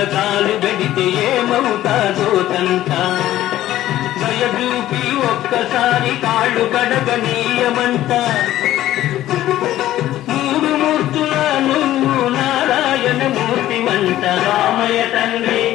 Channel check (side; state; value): right; quieter; 13.9 dB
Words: కాలు పెడితే ఏమవుతాదో తంట. దయచూపి ఒక్కసారి కాళ్ళు కడగనీయమంట. మూడు మూర్తుల నువ్వు నారాయణ మూర్తివంట. రామయ్య తండ్రి,